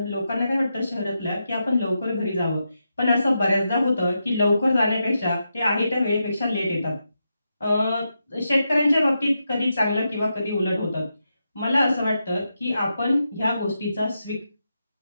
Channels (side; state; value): both; inverted; correlation -0.86